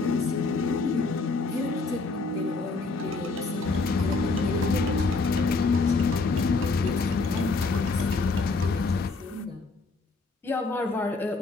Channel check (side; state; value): right; quieter; 3.9 dB